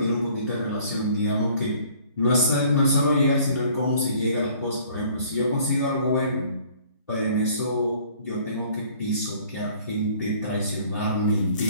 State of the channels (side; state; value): both; inverted; correlation -0.55